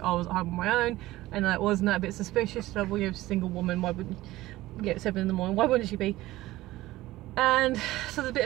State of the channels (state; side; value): quieter; left; 17.2 dB